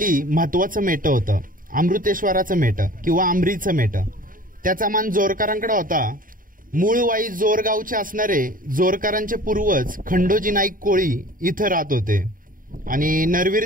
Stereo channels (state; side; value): late; left; 0.40 ms